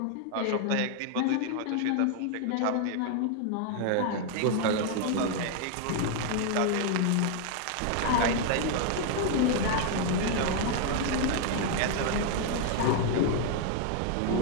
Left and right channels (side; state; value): both; different; correlation 0.00